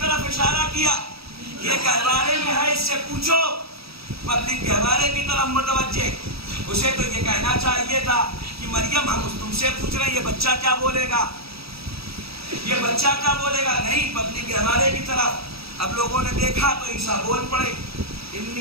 طرف اشارہ کیا، یہ گہوارے میں ہے، اس سے پوچھو. پبلک گہوارے کی طرف متوجہ. اسے تو یہ کہنا چاہیے تھا کہ مریم ہم تم سے پوچھ رہے ہیں، یہ بچہ کیا بولے گا، یہ بچہ کیا بولے گا. نہیں، پبلک گہوارے کی طرف. اب لوگوں نے دیکھا تو عیسیٰ بول پڑے،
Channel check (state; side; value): late; left; 0.77 ms